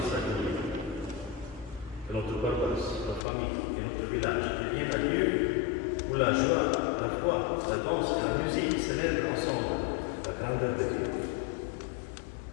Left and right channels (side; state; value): right; drops out; at 3.2 s